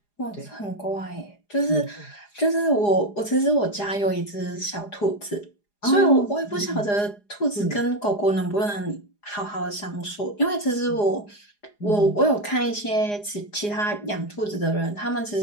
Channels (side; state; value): right; late; 4.9 ms